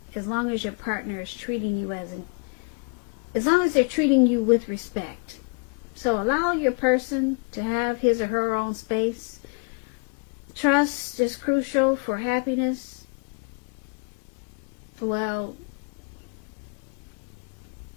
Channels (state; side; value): quieter; right; 37.8 dB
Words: as long as your partner is treating you as long as they're treating you with respect. So allow your person to have his or her own space. Trust is crucial for happiness. Well,